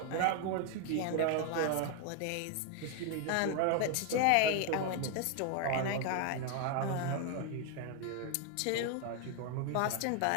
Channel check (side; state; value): both; different; correlation 0.00